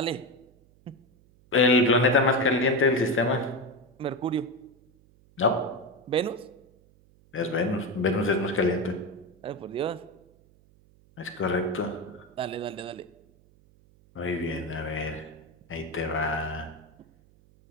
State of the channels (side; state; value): right; noise; hum, 30 dB below the sound